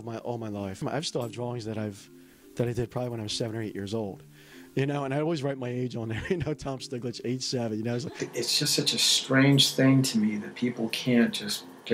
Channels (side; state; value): both; identical; correlation 1.00